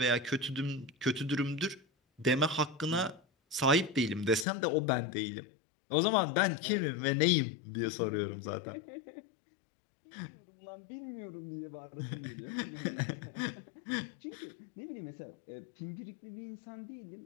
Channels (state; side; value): drops out; right; at 4.5 s